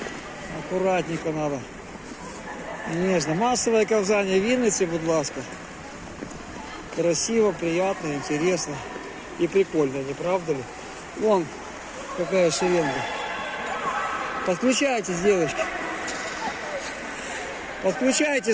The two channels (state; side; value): identical; both; correlation 1.00